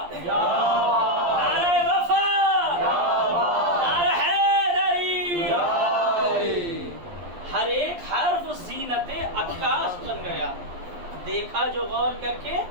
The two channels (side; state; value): left; late; 11 ms